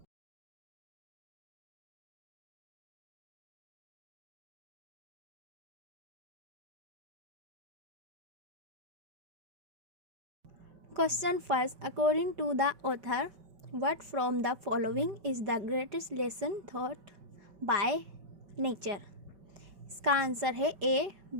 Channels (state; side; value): late; left; 5.2 ms